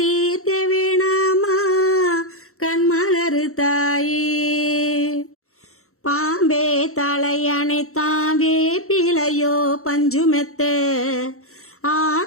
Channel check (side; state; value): right; late; 0.63 ms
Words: தீர்க்க வேணாமா கண்மலரு தாயி பாம்பே தலையணைத்தான் வேப்பிலையோ பஞ்சுமெத்த